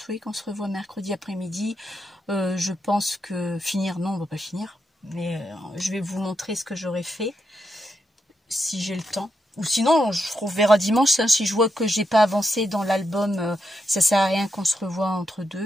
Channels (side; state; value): both; normal; correlation 0.83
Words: oui, qu'on se revoit mercredi après-midi. Je pense que finir, non, on va pas finir. Mais je vais vous montrer ce que j'aurais fait si j'ai le temps. Ou sinon, on verra dimanche. Hein, si je vois que j'ai pas avancé dans l'album, ça sert à rien qu'on se revoie entre